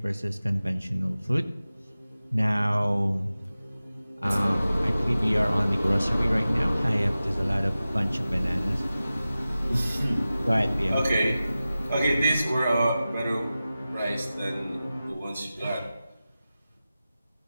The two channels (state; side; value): inverted; both; correlation -0.96